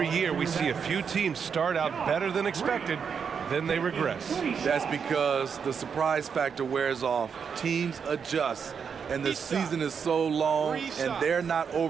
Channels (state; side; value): quieter; left; 6.6 dB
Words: year we see a few teams start out better than expected, then they regress. That's because the surprise factor wears off. Teams adjust, and the season is so long, and they're not